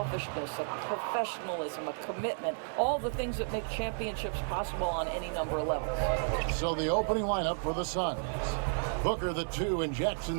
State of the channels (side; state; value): left; silent; 56 dB below the other